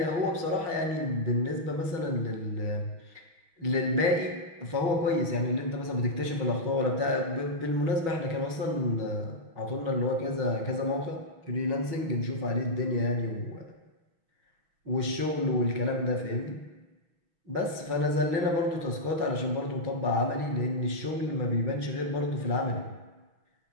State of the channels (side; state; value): left; late; 6.1 ms